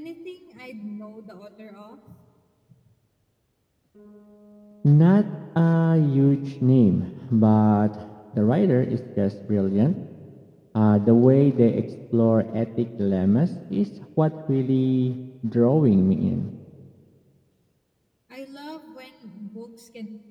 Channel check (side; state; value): both; identical; correlation 1.00